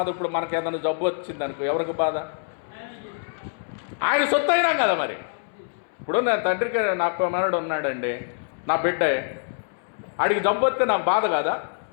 ఇప్పుడు మనకి ఏదైనా జబ్బు వచ్చింది అనుకో, ఎవరికి బాధ? ఆయన సొత్తు అయినాం కదా. మరి ఇప్పుడు నా తండ్రికి నాకు మనడు ఉన్నాడండి, నా బిడ్డే, ఆడికి జబ్బు వస్తే నాకు బాధ కాదా?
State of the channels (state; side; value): silent; right; 62 dB below the other